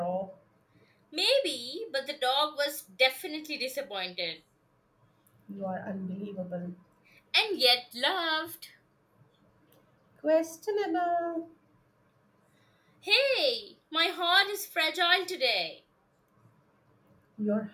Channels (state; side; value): identical; both; correlation 1.00